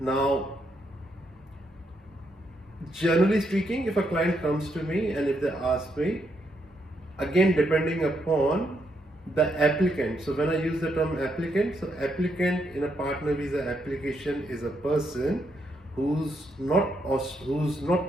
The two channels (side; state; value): both; normal; correlation 0.78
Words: generally speaking, if a client comes to me and if they ask me, again depending upon the applicant. So when I use the term applicant, so applicant in a partner visa application is a person who's not